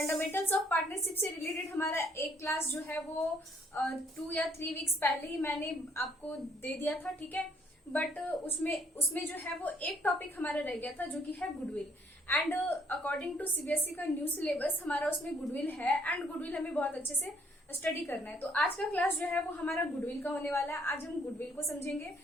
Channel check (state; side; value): normal; both; correlation 0.66